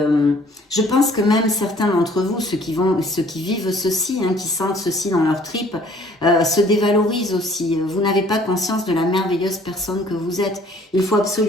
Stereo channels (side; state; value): both; normal; correlation 0.57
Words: pense que même certains d'entre vous, ceux qui vivent ceci, hein, qui sentent ceci dans leur tripes, se dévalorisent aussi. Vous n'avez pas conscience de la merveilleuse personne que vous êtes. Il faut